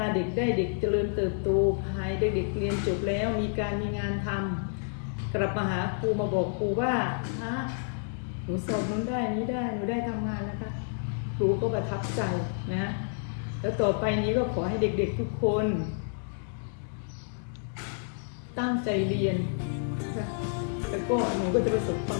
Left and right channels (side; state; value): right; silent; digital silence